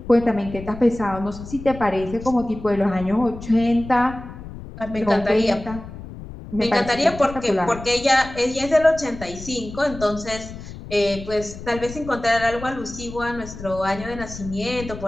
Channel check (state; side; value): noise; left; rumble, 13 dB below the sound